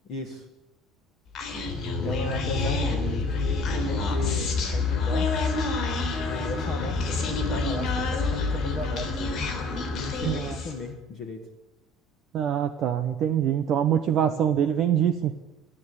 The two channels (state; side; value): normal; both; correlation 0.48